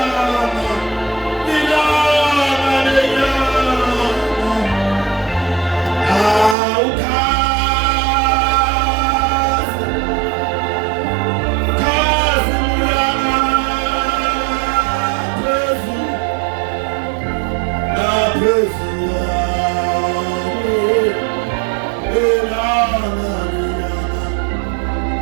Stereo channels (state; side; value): drops out; left; at 6.6 s